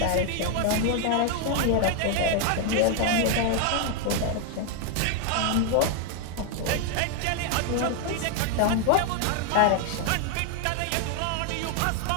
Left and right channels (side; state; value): both; different; correlation 0.00